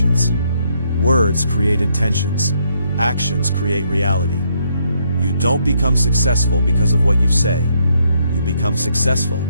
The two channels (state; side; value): inverted; both; correlation -0.73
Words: Words create intentions. Actions create reality. You don't become successful because of what you say. You become successful